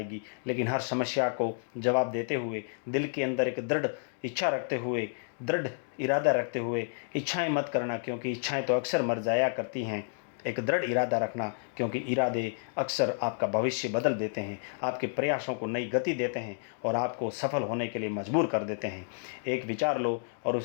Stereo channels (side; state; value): right; silent; digital silence